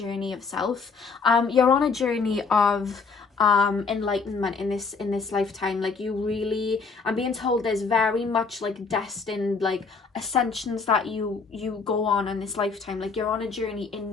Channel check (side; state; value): right; quieter; 4.9 dB